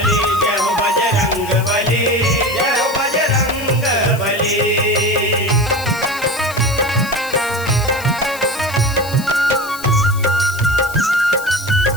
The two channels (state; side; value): noise; left; hiss, 14 dB below the sound